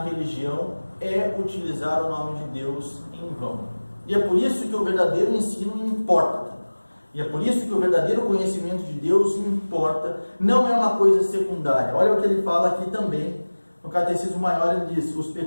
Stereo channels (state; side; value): inverted; both; correlation -1.00